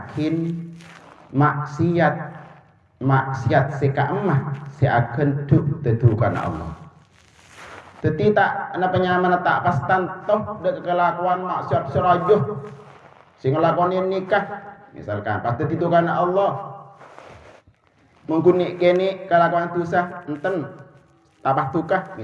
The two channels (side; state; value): both; identical; correlation 1.00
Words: maksiat seka emah si akan duk tetukan Allah. Teti tak ana penyamana tak pastan toh dek kelakuan maksiat serajuh sing ngelakonin nikah misalkan pas tetukan Allah mengkunik kene kelakuan dosa enten tapah tukah